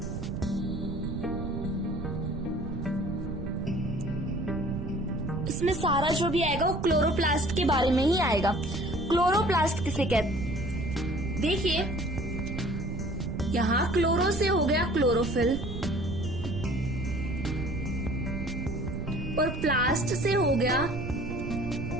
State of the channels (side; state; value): right; noise; rumble, 6 dB below the sound